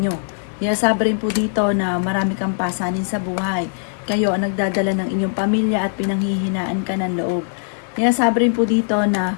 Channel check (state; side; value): silent; right; 60 dB below the other